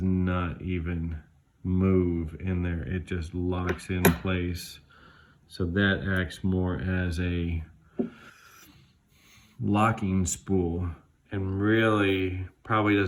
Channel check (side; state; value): both; identical; correlation 1.00